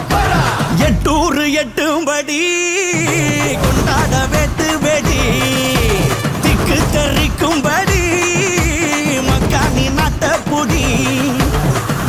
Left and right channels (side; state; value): both; identical; correlation 1.00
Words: எட்டூரு எட்டும்படி கொண்டாட வெட்டு வெடி திக்கு தெரிக்கும்படி மக்கானி நாட்ட புடி